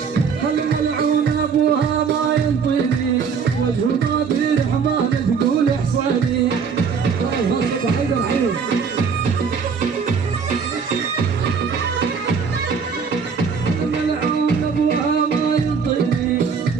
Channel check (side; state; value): left; quieter; 5.9 dB